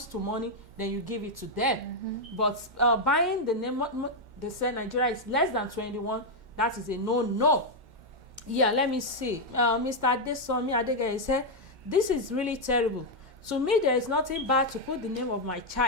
to money, then you give it to them. But buying the name, they say Nigeria is less than 21, that is a no. Yeah, let me see. Mr. Adesomi Adegeye said, this is really terrible. To me, there is nothing bad to put the name of my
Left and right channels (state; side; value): late; left; 2.1 ms